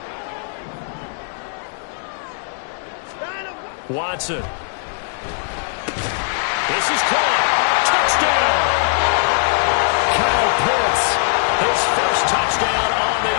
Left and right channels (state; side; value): silent; right; digital silence